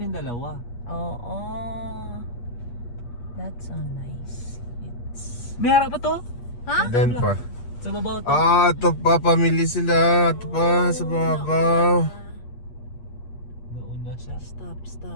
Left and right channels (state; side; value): late; right; 8.4 ms